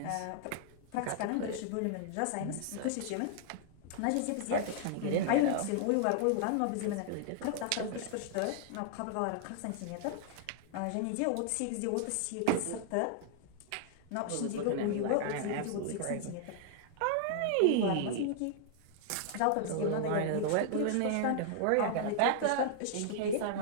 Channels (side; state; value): both; different; correlation -0.01